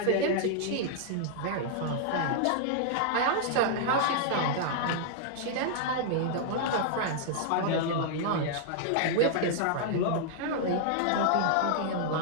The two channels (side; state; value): both; different; correlation -0.01